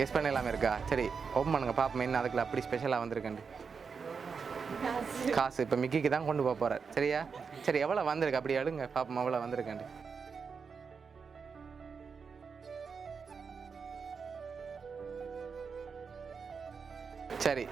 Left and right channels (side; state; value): left; quieter; 5.6 dB